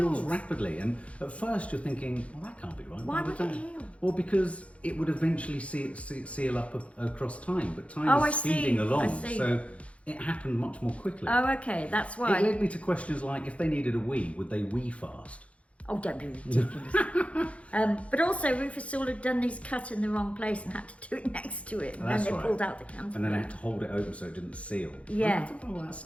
rapidly, and at first you're thinking, well, that can't be right. Why would it heal? Well, because it would eventually seal up across time, but time is speeding along, so it happened much more quickly. Oh, okay, that's why. It led me to questions like, if they needed a wee, would they wee fast? Oh, don't be ridiculous. But also, Rufus Sewell had done his cut in the wrong place and had to do it next to it. And then they pulled out the cantaloupe. And then they had to hold it open so it didn't seal. Yeah. I thought all that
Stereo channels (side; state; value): right; late; 0.063 ms